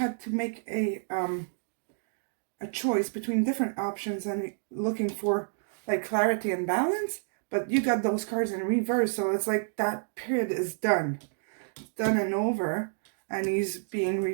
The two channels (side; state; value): left; silent; digital silence